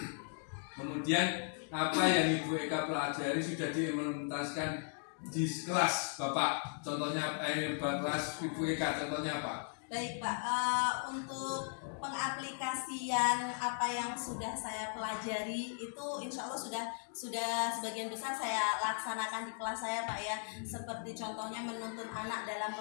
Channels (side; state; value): right; silent; 53 dB below the other